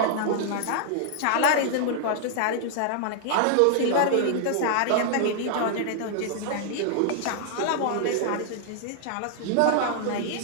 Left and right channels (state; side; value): different; both; correlation -0.01